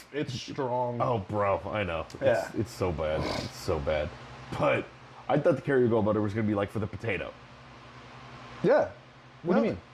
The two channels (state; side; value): identical; both; correlation 1.00